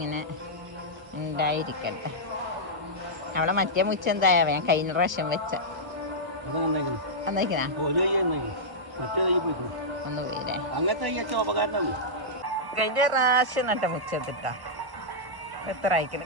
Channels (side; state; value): left; late; 1.1 ms